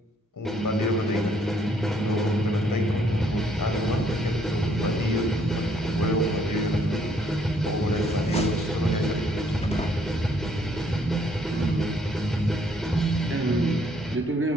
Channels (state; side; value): normal; both; correlation 0.67